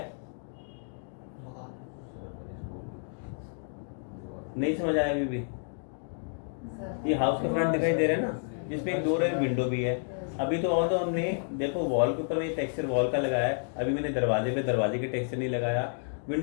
नहीं समझ आया अभी भी? ये हाउस का फ्रंट दिखाई दे रहा है ना, जिसमें एक डोर है, विंडो भी है। अभी तो और तो हमने देखो वॉल के ऊपर में टेक्सचर वॉल का लगाया है, अभी मैंने दरवाजे पे दरवाजे के टेक्सचर नहीं लगाया,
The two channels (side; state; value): right; silent; digital silence